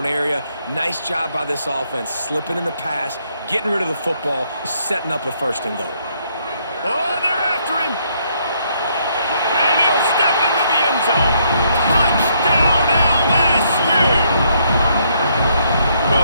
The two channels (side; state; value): both; inverted; correlation -0.71